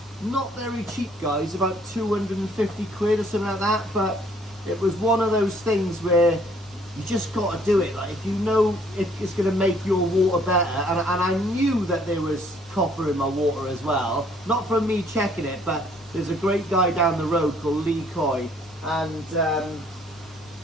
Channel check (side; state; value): both; normal; correlation 0.62